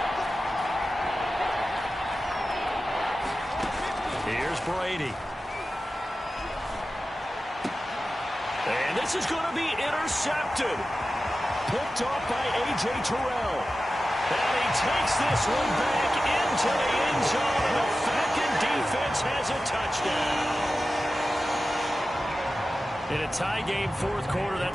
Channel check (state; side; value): normal; both; correlation 0.94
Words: Here's Brady. And this is going to be intercepted. Picked off by A.J. Terrell. And he takes this one back into the end zone, and the Falcon defense has a touchdown. In a tie game fourth quarter,